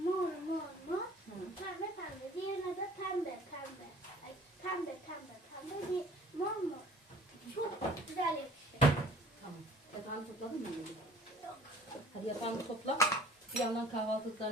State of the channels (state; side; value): normal; both; correlation 0.50